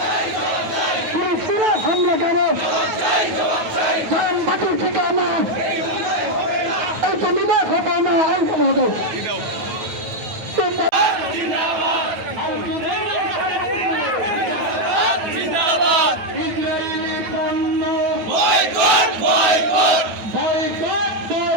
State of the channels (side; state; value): left; late; 9.2 ms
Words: ফিলিস্তিনের হামলা কেন জানবাদীর ঠিকানা এইটা নিবে হবে না এইটা হবে ইসরায়েলি পণ্য বয়কট বয়কট বয়কট